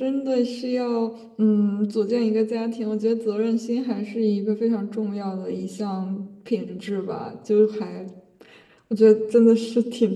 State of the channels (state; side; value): identical; both; correlation 1.00